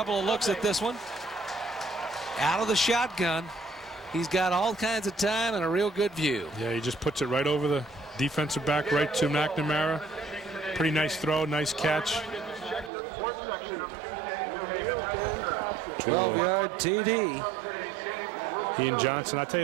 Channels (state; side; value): drops out; left; at 12.9 s